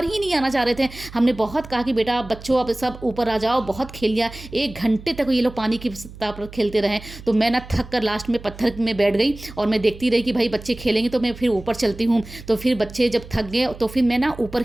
ही नहीं आना चाह रहे थे। हमने बहुत कहा कि बेटा बच्चों अब सब ऊपर आ जाओ, बहुत खेल लिया। 1 घंटे तक ये लोग पानी की ताप खेलते रहे। तो मैं ना थक कर लास्ट में पत्थर में बैठ गई और मैं देखती रही कि भाई बच्चे खेलेंगे तो मैं फिर ऊपर चलती हूँ। तो फिर बच्चे जब थक गए तो फिर मैं ना ऊपर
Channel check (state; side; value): noise; right; hum, 16 dB below the sound